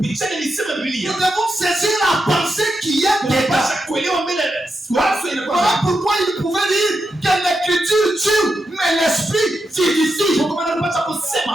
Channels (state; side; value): normal; both; correlation 0.86